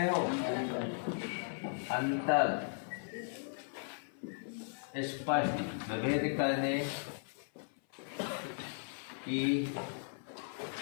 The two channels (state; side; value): silent; right; 53 dB below the other